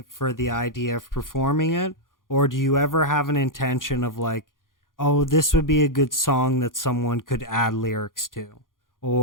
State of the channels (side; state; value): right; late; 0.90 ms